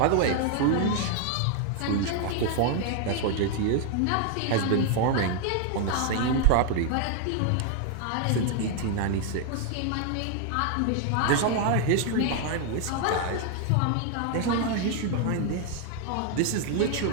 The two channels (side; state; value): both; different; correlation 0.00